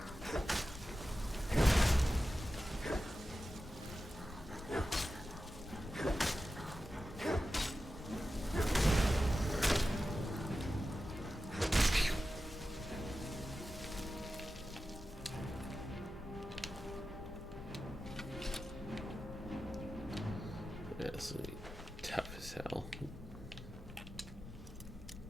That's tough as hell.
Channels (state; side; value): normal; both; correlation 0.93